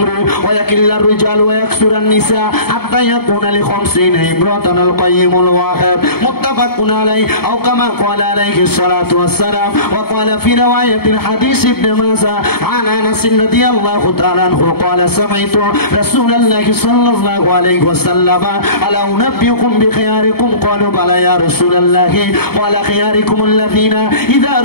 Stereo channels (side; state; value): right; late; 0.95 ms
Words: ويقل الرجال ويكثر النساء حتى يكون ل50 امرأة القيم الواحد متفق عليه او كما قال عليه الصلاه والسلام. وقال في روايه الحديث ابن ماجه عن انس رضي الله تعالى عنه قال سمعت رسول الله صلى الله عليه وسلم الا انبئكم بخياركم قالوا بلى يا رسول الله قال خياركم الذين اذا